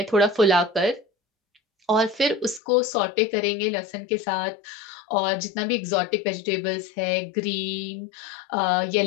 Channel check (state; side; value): drops out; right; at 2.6 s